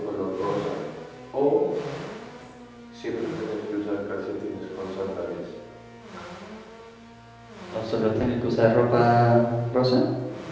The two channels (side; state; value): both; identical; correlation 1.00